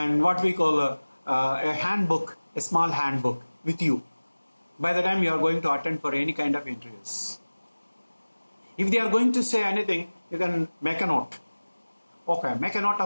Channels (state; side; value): inverted; both; correlation -1.00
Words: what we call a handbook, a small handbook with you by the time you are going to attend for any kind of interviews. If they are going to say anything, you can make a note. Okay, make a note